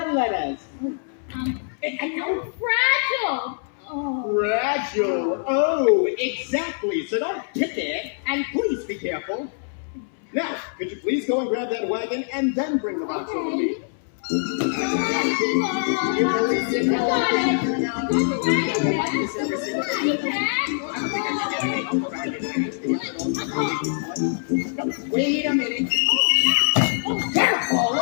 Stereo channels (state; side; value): silent; right; 63 dB below the other